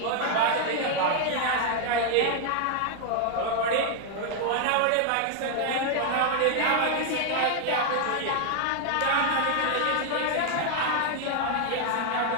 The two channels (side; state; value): both; different; correlation 0.00